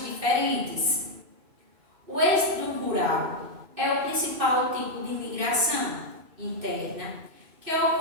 diferentes. O êxodo rural é o principal tipo de migração interna que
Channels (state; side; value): late; left; 2.6 ms